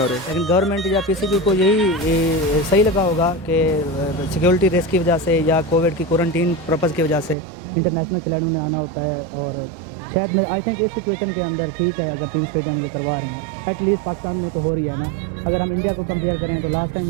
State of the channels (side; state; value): left; drops out; at 7.4 s